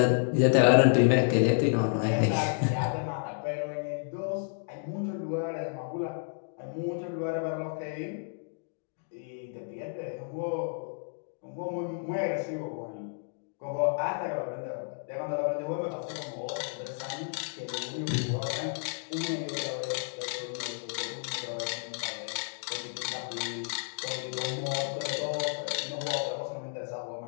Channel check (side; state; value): right; silent; digital silence